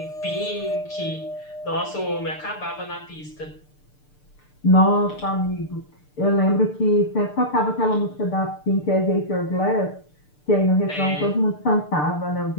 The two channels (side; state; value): right; late; 6.7 ms